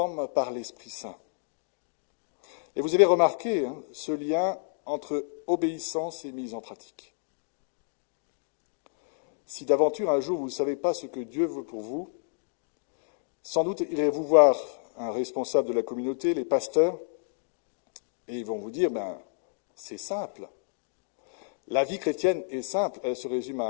par l'Esprit Saint. Et vous avez remarqué ce lien entre obéissance et mise en pratique. Si d'aventure un jour vous ne savez pas ce que Dieu veut pour vous, sans doute irez-vous voir un responsable de la communauté, les pasteurs, et ils vont vous dire, c'est simple. La vie chrétienne est simple, elle se résume à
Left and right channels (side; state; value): right; silent; digital silence